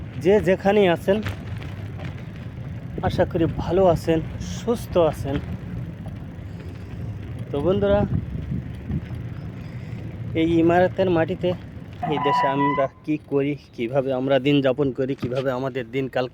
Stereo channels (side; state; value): both; identical; correlation 1.00